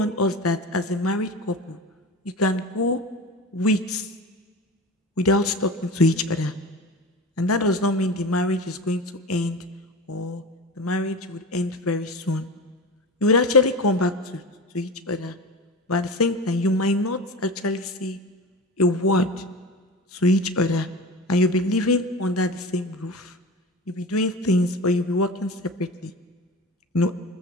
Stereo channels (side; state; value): both; normal; correlation 0.30